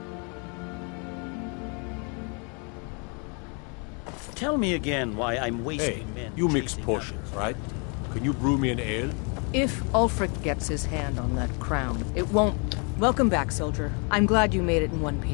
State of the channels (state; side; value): quieter; right; 35.7 dB